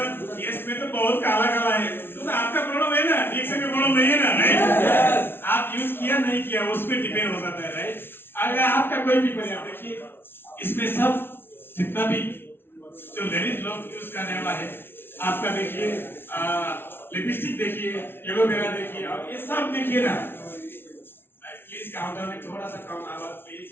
केस में तो बहुत काला काला है, तो आपका प्रॉब्लम है ना, ठीक से प्रॉब्लम नहीं है ना, राइट? आप यूज किया नहीं किया उस पर डिपेंड हो जाता है, राइट? अगर आपका कोई भी परिणाम देखिए, इसमें सब जितना भी जो लेडीज लोग यूज करने वाला है, आपका देखिए लिपस्टिक देखिए, एलोवेरा देखिए, और ये सब देखिए ना। प्लीज काउंटर में थोड़ा सा कम आवाज प्लीज।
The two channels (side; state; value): right; late; 0.11 ms